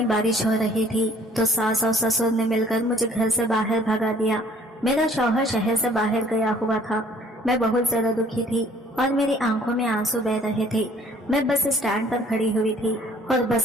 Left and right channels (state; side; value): normal; both; correlation 0.57